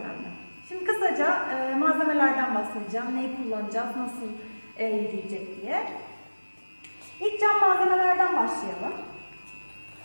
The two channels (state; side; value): inverted; both; correlation -1.00